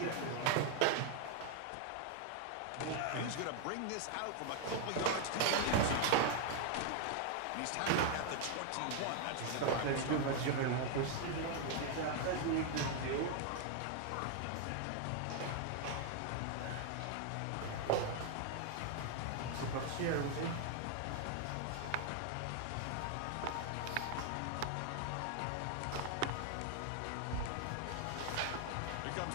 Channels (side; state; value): both; different; correlation 0.00